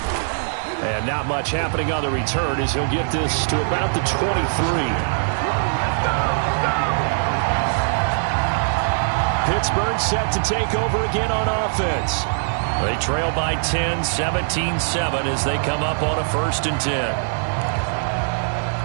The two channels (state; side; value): silent; left; digital silence